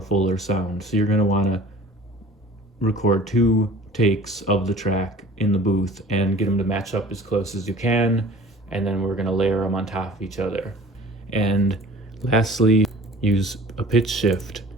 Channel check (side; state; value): both; normal; correlation 0.46